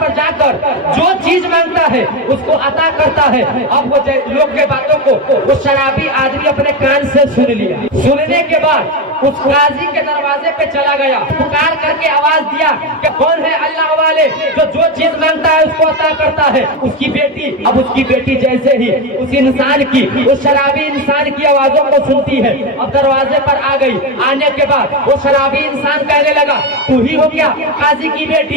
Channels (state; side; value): normal; both; correlation 0.14